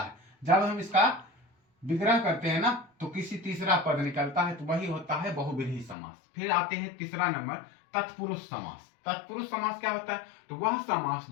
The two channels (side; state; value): right; drops out; at 6.0 s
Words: जब हम इसका विग्रह करते हैं ना तो किसी तीसरा पद निकलता है, तो वही होता है बहुव्रीहि समास। फिर आते हैं तीसरा नंबर, तत्पुरुष समास। तत्पुरुष समास क्या होता है? तो वह समास